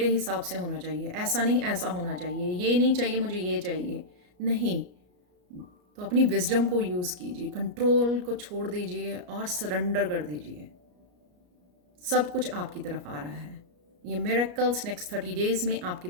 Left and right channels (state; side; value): late; left; 33 ms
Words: हिसाब से होना चाहिए, ऐसा नहीं ऐसा होना चाहिए, ये नहीं चाहिए मुझे ये चाहिए, नहीं। तो अपनी विजडम को यूज़ कीजिए, कंट्रोल को छोड़ दीजिए और सरेंडर कर दीजिए, सब कुछ आपकी तरफ आ रहा है। ये मिरेकल्स नेक्स्ट 30 डेज में आपकी